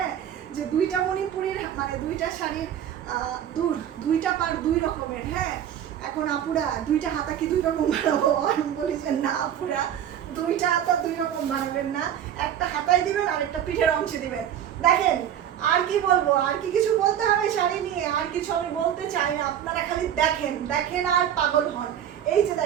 যে 2টা মণিপুরের মানে 2টা শাড়ির দুইটা পার 2 রকমের। হ্যাঁ, এখন আপুরা 2টা হাতা কি 2 রকম বানাবো? আমি বলি যে না আপুরা, 2টা হাতা 2 রকম বানাবেন না, একটা হাতায় দিবেন আর একটা পিঠের অংশে দিবেন। দেখেন আর কি বলবো, আর কি কিছু বলতে হবে শাড়ি নিয়ে? আর কিছু আমি বলতে চাই না, আপনারা খালি দেখেন আর পাগল হন। এই যে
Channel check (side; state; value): left; quieter; 10.0 dB